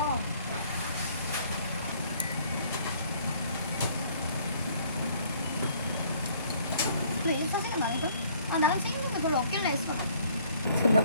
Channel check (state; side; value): inverted; both; correlation -0.60